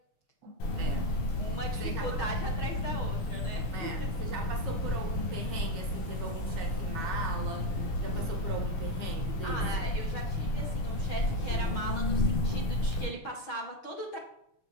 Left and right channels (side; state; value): right; late; 6.3 ms